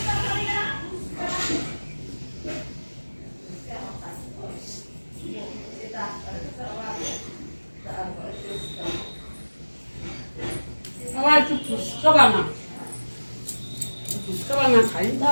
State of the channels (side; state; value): both; inverted; correlation -1.00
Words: আবার একটু ফুচকা বানা, ফুচকা বানা খাই